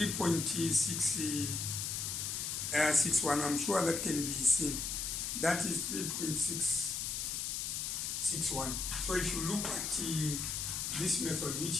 I'm sure that can be seen. That is 3.661. So if you look at this method,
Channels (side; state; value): left; noise; hiss, 2 dB below the sound